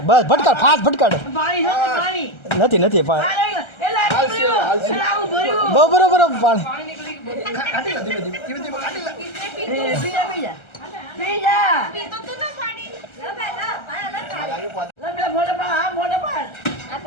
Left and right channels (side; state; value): right; late; 1.3 ms